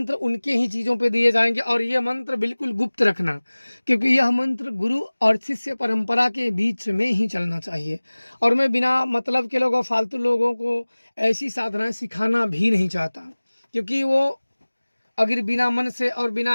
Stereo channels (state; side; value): inverted; both; correlation -1.00